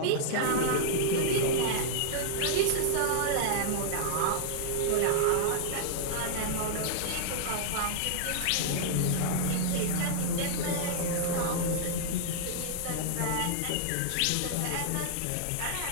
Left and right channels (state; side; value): different; both; correlation -0.01